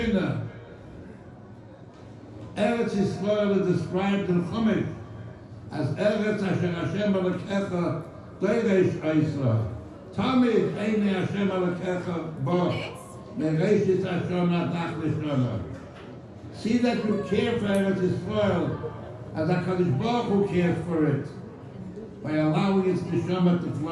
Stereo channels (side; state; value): both; identical; correlation 1.00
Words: Eretz Yisrael is described in Chumash as Eretz Asher Hashem Elokecha Doresh Oisra. Tamid Eine Hashem Elokecha Bo Mereshit Hashem Adach Lishona. See that you care for Eretz Yisrael as HaKadosh Baruch Hu cares for it, by allowing its neshama to